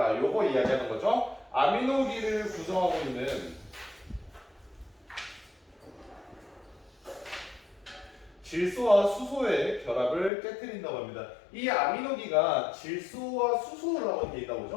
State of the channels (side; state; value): right; drops out; at 10.3 s